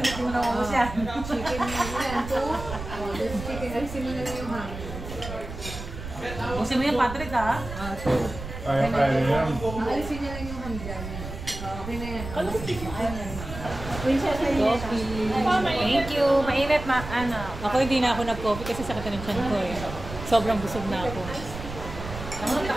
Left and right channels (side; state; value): right; noise; rumble, 10 dB below the sound